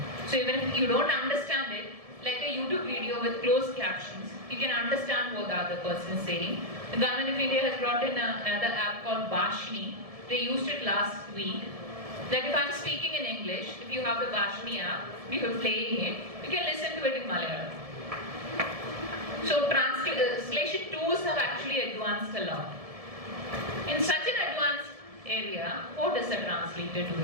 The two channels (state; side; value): late; left; 1.7 ms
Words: So even if you don't understand it, like a YouTube video with closed captions, you can understand what the other person is saying. The government of India has brought in another app called Bhashni. They used it last week. That if I'm speaking in English, if you have the Bhashni app, if you're playing it, you can listen to it in Malayalam. So translation tools have actually advanced a lot. In such an advanced area, what is a translator